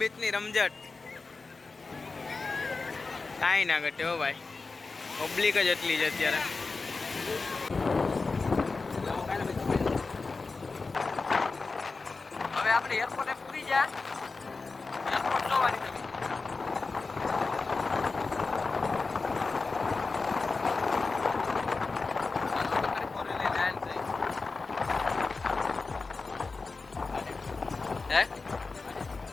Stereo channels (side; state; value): right; quieter; 4.0 dB